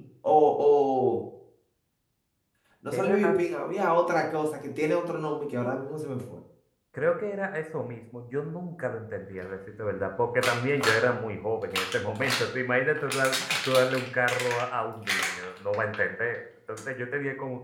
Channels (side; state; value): both; identical; correlation 1.00